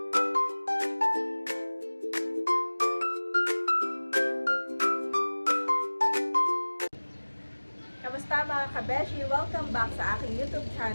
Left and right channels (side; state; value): both; inverted; correlation -1.00